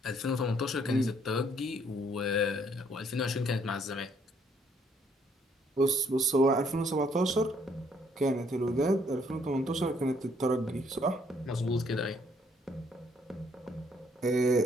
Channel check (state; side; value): normal; both; correlation 0.67